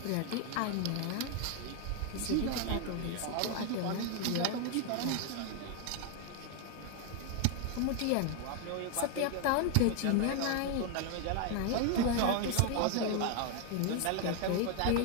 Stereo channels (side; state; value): both; different; correlation 0.01